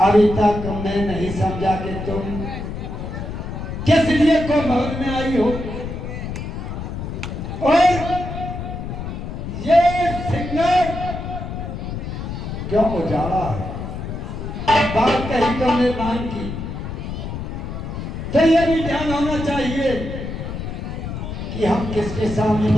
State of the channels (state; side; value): noise; left; rumble, 6 dB below the sound